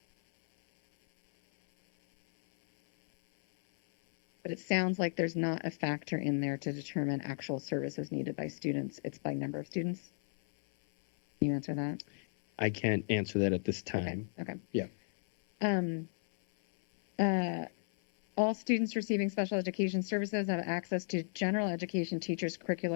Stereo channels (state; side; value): silent; right; 55 dB below the other